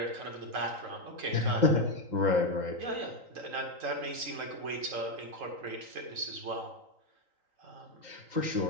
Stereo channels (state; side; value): late; left; 3.8 ms